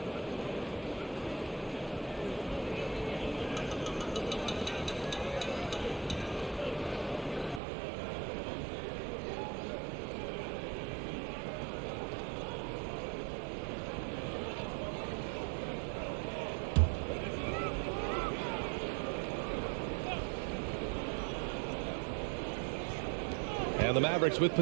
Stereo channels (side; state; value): left; drops out; at 7.6 s